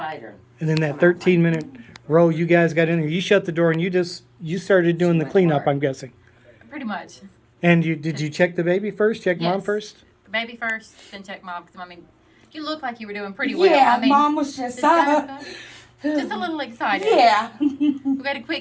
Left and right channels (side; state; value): both; identical; correlation 1.00